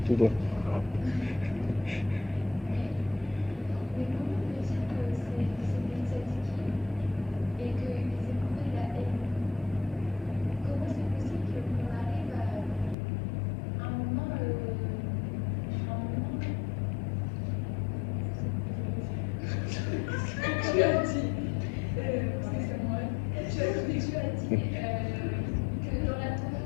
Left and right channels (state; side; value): drops out; right; at 13.0 s